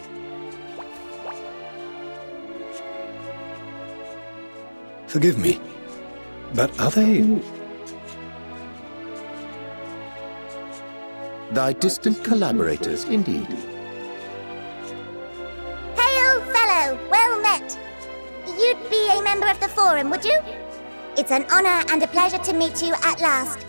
Forgive me, but are they... Thy distant collaborators, indeed. Hail, fellow! Well met! You'd be a member of the Forum, would you? It's an honor and a pleasure to meet you at last.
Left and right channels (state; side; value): inverted; both; correlation -1.00